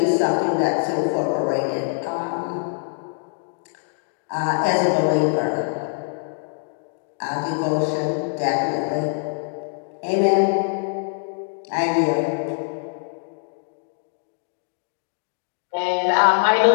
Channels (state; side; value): silent; right; digital silence